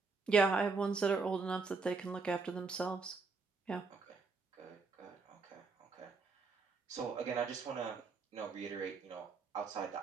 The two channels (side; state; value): left; quieter; 4.4 dB